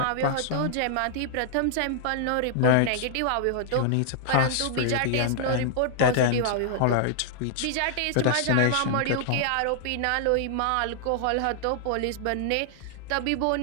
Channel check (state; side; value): different; both; correlation -0.01